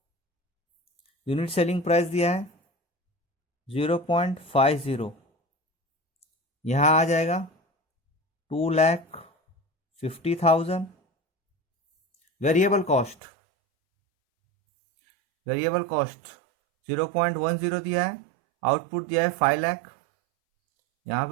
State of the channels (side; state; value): left; drops out; at 13.2 s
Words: unit selling price दिया है 0.50, यहां आ जाएगा 2,50,000. वेरिएबल कॉस्ट 0.10 दिया है, आउटपुट दिया है 5 लाख, यहाँ